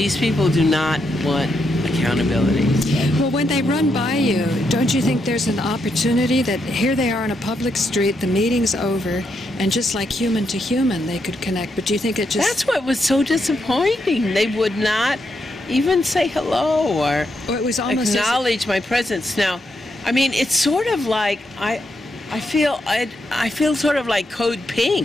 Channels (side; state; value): both; normal; correlation 0.81